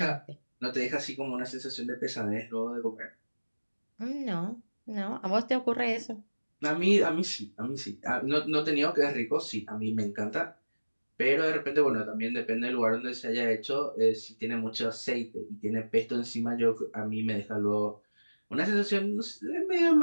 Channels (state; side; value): inverted; both; correlation -1.00